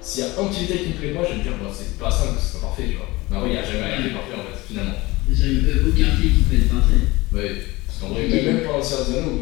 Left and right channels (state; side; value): quieter; right; 21.2 dB